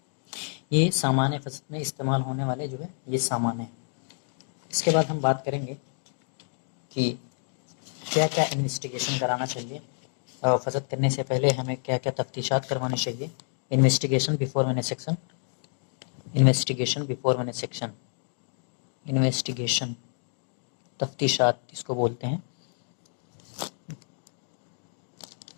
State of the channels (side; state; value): right; silent; digital silence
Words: یہ سامان فصل میں استعمال ہونے والے جو ہے یہ سامان ہیں. اس کے بعد ہم بات کریں گے کہ کیا کیا انویسٹیگیشن کرانا چاہیے، فصد کرنے سے پہلے ہمیں کیا کیا تفتیشات کروانی چاہیے. Investigation before venesection, investigation before venesection, investigation تفتیشات اس کو بولتے ہیں.